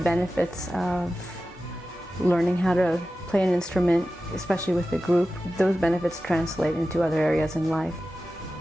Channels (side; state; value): both; normal; correlation 0.94